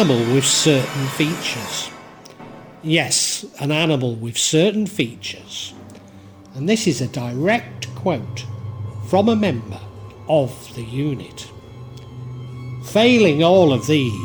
with certain features. Yes, an animal with certain features. And this is a direct quote from a member of the unit. Failing all of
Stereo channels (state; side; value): identical; both; correlation 1.00